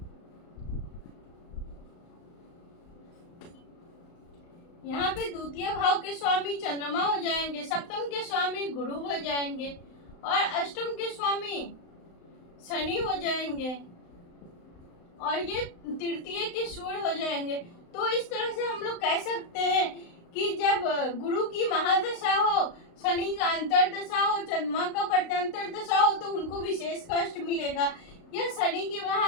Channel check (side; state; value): right; late; 35 ms